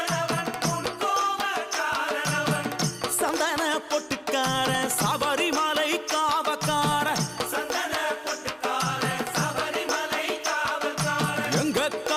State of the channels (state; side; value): identical; both; correlation 1.00